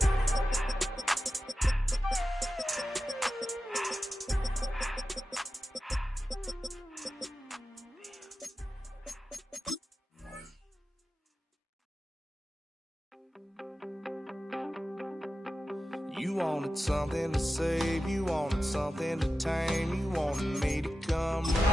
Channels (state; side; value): normal; both; correlation 0.93